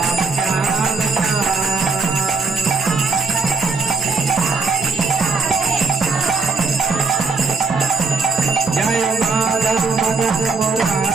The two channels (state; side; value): quieter; left; 4.5 dB